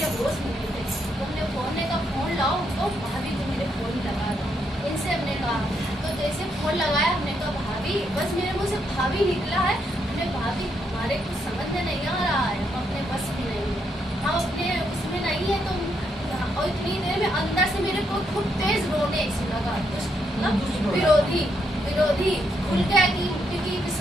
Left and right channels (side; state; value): both; normal; correlation 0.77